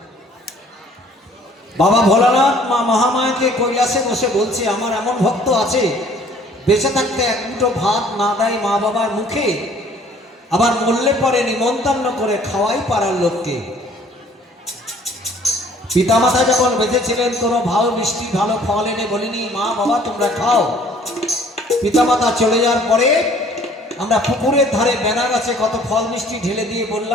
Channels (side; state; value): both; normal; correlation 0.56